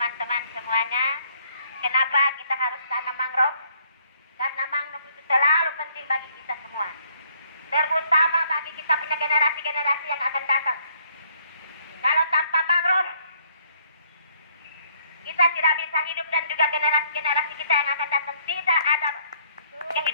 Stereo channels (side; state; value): both; inverted; correlation -0.65